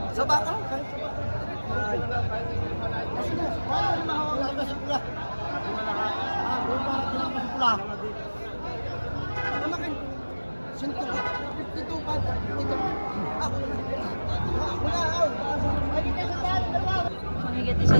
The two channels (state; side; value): inverted; both; correlation -1.00